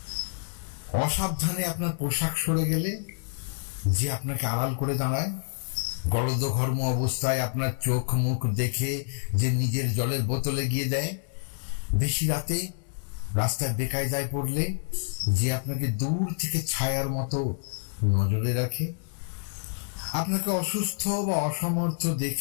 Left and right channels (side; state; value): right; silent; digital silence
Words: অসাবধানে আপনার পোশাক সরে গেলে যে আপনাকে আড়াল করে দাঁড়ায়, গলদঘর্ম অবস্থায় আপনার চোখ মুখ দেখে যে নিজের জলের বোতলে গিয়ে দেয়, বেশি রাতে রাস্তায় বেকায়দায় পড়লে যে আপনাকে দূর থেকে ছায়ার মতো নজরে রাখে, আপনাকে অসুস্থ বা অসমর্থ